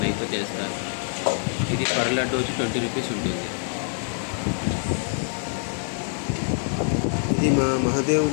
నెయ్యితో చేస్తారు. ఇది పర్ లడ్డు వచ్చి 20 రూపీస్ ఉంటుంది. ఇది మా మహాదేవ్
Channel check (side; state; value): right; silent; 55 dB below the other